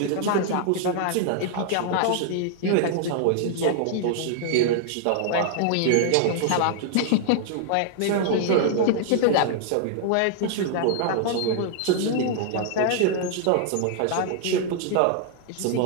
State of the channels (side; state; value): both; different; correlation -0.01